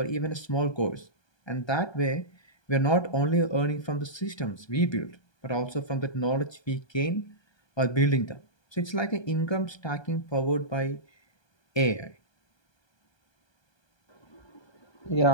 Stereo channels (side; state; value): right; late; 1.2 ms